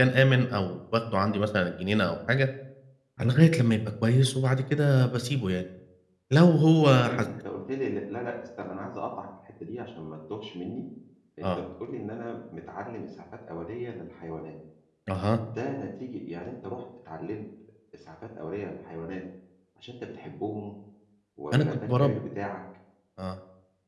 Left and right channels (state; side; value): identical; both; correlation 1.00